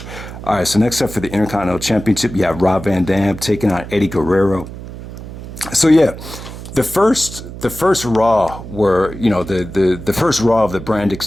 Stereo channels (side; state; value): right; noise; hum, 12 dB below the sound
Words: All right, so next up for the Intercontinental Championship, you have Rob Van Dam taking on Eddie Guerrero. So yeah, the first Raw were, the first Raw of the brand